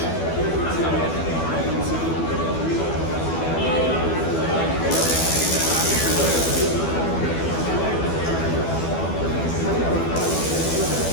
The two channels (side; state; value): right; late; 12 ms